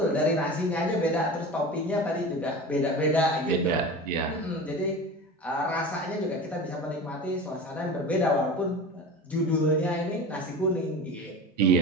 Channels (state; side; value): normal; both; correlation 0.32